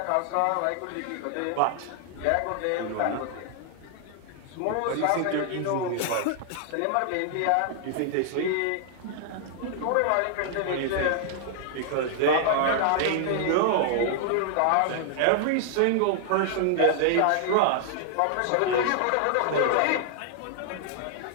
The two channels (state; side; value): different; both; correlation 0.00